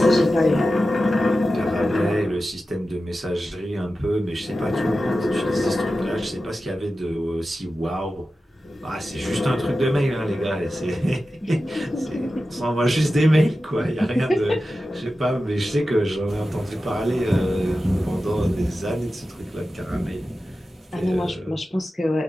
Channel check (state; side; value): normal; both; correlation 0.93